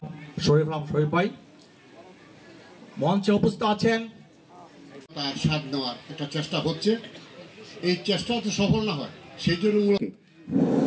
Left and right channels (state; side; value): identical; both; correlation 1.00